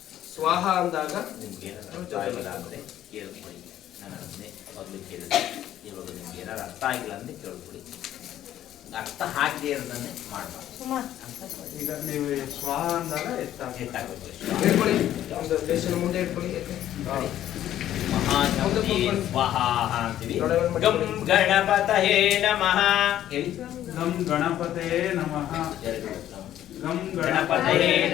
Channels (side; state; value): right; quieter; 12.1 dB